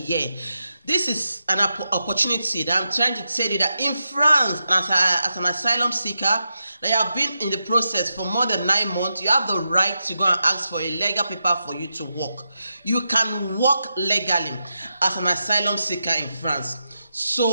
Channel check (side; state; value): both; inverted; correlation -0.87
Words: This is an opportunity that I'm trying to tell you, that in France, as an asylum seeker, that you have been in the process for more than 9 months, you have the right to go and ask for a legal paper for you to work. You can work legally as an asylum seeker in France.